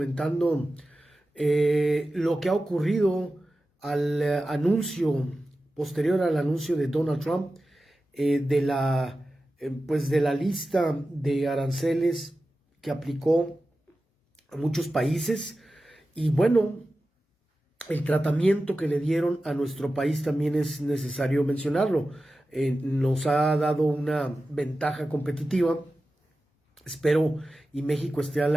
lo que ha ocurrido al anuncio, posterior al anuncio de Donald Trump, pues de la lista de aranceles que aplicó a muchos países. Y bueno, el tratamiento que le dieron a nuestro país también es necesario mencionarlo. Nos ha dado una ventaja competitiva. Espero y México esté a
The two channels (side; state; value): both; normal; correlation 0.94